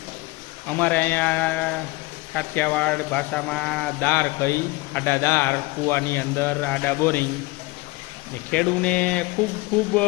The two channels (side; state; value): right; quieter; 22.7 dB